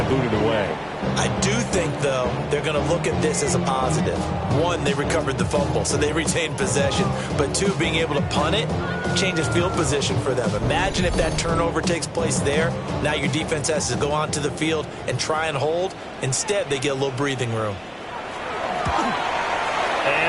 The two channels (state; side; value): identical; both; correlation 1.00